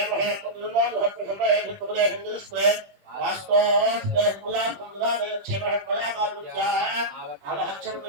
महे पुत्रन्दोहत्प्रसन्नये भित्तुपदेशन्दुस्त्रे वास्तोस्त्रे कुलाकुलादेक्षेमः कलाकालविद्याः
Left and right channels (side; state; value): left; late; 20 ms